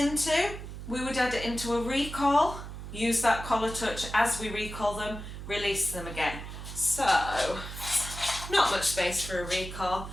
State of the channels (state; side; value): noise; right; hum, 10 dB below the sound